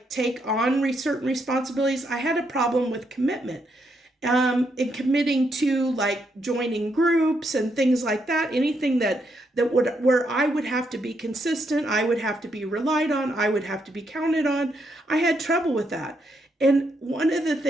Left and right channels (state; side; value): normal; both; correlation 0.78